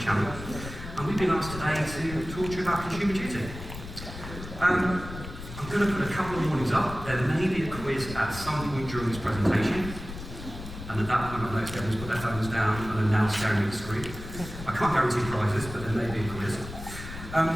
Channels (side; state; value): left; noise; rumble, 11 dB below the sound